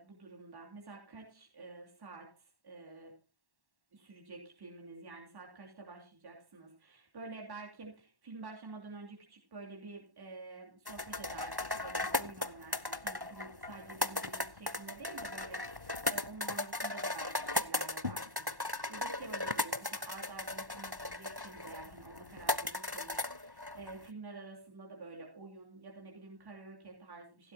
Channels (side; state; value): left; late; 1.1 ms